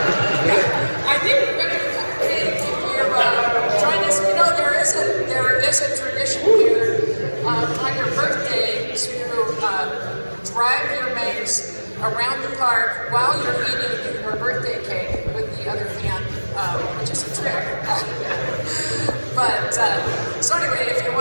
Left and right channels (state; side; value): inverted; both; correlation -1.00